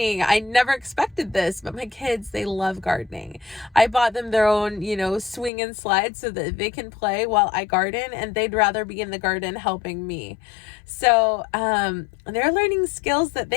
I never expected this, but my kids, they love gardening. I bought them their own, swing and slide so that they can play while I garden, and they'd rather be in the garden helping me. So they're learning skills that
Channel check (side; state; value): right; drops out; at 5.5 s